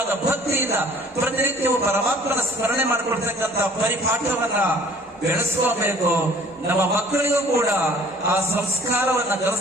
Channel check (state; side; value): normal; both; correlation 0.53